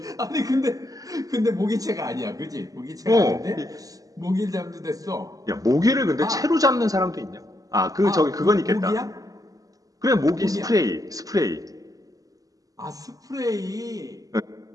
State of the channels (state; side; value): late; left; 0.17 ms